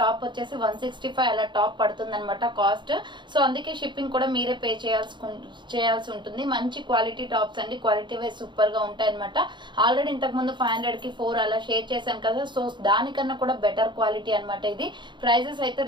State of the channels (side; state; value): left; late; 0.23 ms